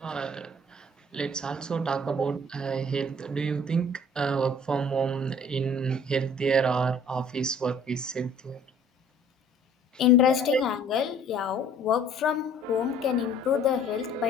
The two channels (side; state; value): both; normal; correlation 0.53